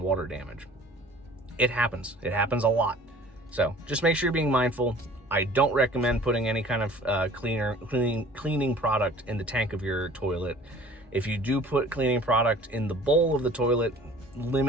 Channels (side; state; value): both; normal; correlation 0.49